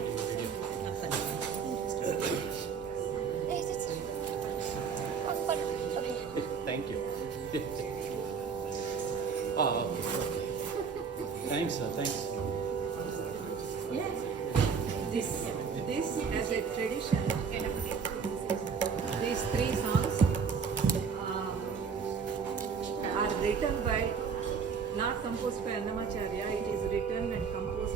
the video. Thank you. Oh, okay. Thanks, sir. Thanks. This as a tradition, these 3 songs are written by, not composed by Annamacharya, it is written and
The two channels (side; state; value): left; quieter; 6.0 dB